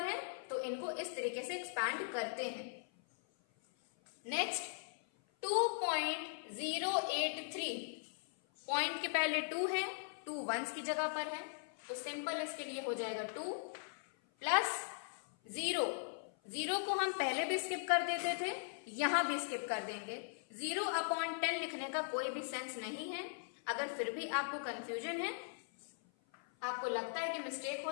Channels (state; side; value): silent; right; 51 dB below the other